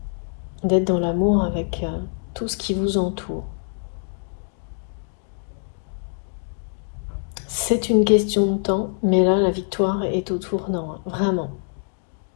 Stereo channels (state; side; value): silent; right; 62 dB below the other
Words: d'être dans l'amour avec tout ce qui vous entoure. C'est une question de temps, mais là, la victoire est au tournant, vraiment.